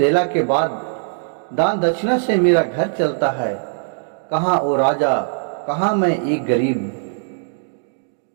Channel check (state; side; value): silent; left; digital silence